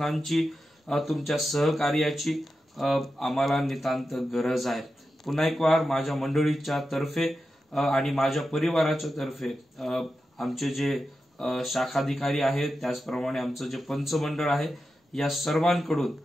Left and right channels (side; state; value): both; normal; correlation 0.90